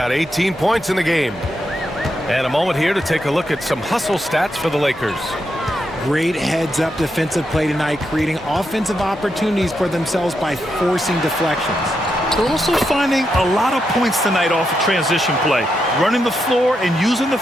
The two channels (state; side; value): normal; both; correlation 0.83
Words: 18 points in the game. And a moment here to take a look at some hustle stats for the Lakers. Great heads-up defensive play tonight, creating offensive opportunities for themselves by forcing deflections. They're also finding a lot of points tonight off of transition play, running the floor and using the